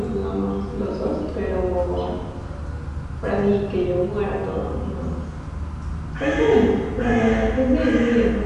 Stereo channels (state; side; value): identical; both; correlation 1.00